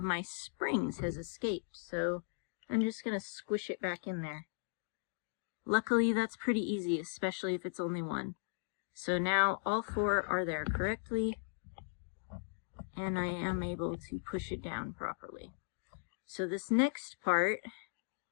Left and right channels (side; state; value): right; silent; digital silence